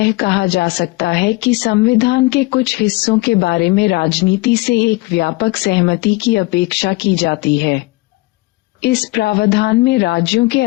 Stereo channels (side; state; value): right; quieter; 22.4 dB